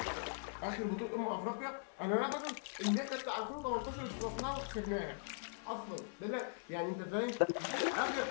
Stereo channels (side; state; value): right; silent; 51 dB below the other